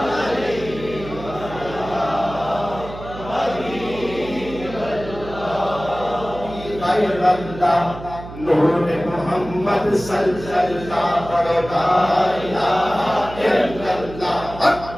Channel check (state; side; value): noise; right; hum, 13 dB below the sound